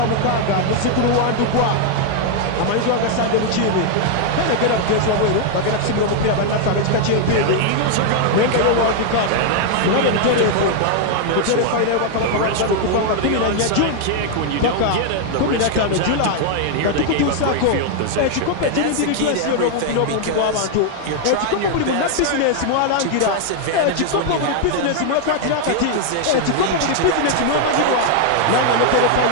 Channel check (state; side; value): different; both; correlation 0.00